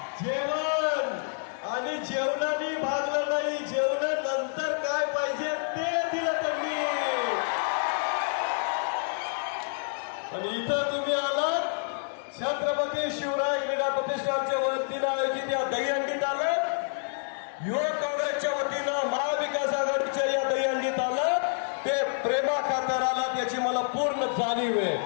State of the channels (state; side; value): silent; right; digital silence